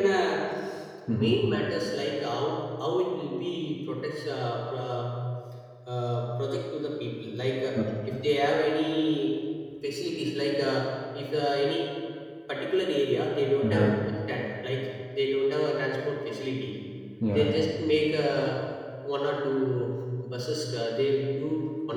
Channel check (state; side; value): identical; both; correlation 1.00